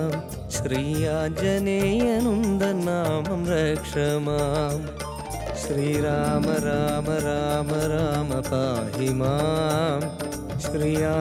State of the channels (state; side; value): identical; both; correlation 1.00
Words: श्री आञ्जनेयनुन्दन् नामं रक्ष माम् श्रीराम राम राम राम पाहि मां श्री